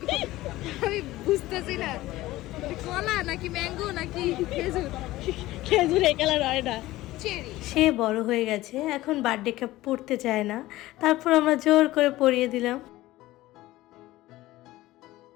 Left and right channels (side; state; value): right; quieter; 17.1 dB